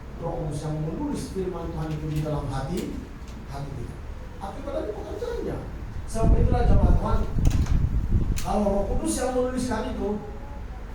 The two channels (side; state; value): both; identical; correlation 1.00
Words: yang menulis firman Tuhan itu di dalam hati kita. Akibat dari pekerjaannya. Sebab itulah jemaat Tuhan, kalau Roh Kudus yang menuliskan itu,